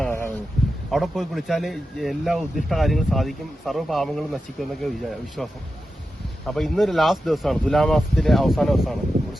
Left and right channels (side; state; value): both; normal; correlation 0.91